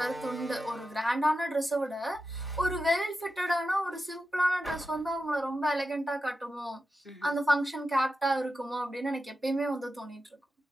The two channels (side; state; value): both; normal; correlation 0.90